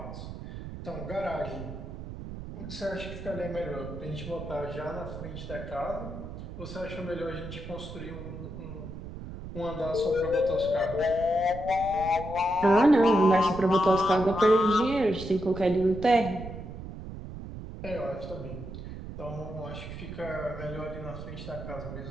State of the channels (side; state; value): right; noise; rumble, 10 dB below the sound